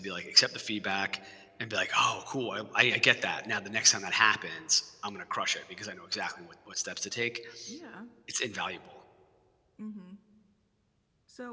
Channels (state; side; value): identical; both; correlation 1.00